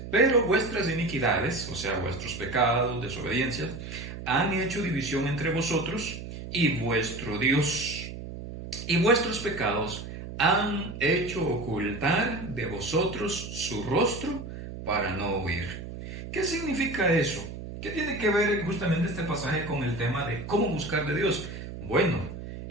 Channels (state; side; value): noise; right; hum, 10 dB below the sound